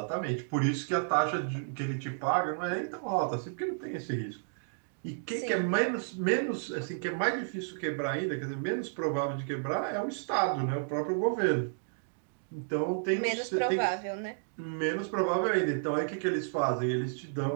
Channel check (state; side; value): silent; left; digital silence